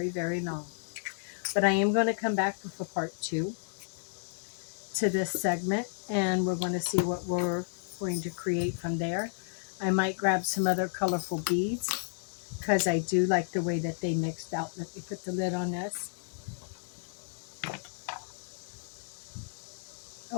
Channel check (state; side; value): silent; right; digital silence